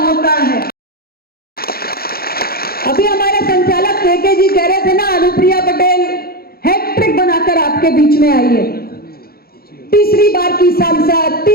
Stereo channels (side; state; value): right; late; 0.44 ms